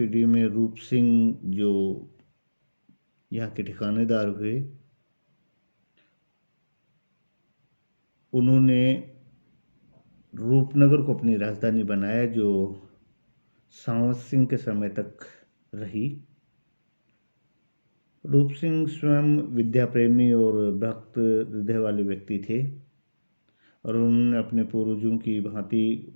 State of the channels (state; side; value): inverted; both; correlation -1.00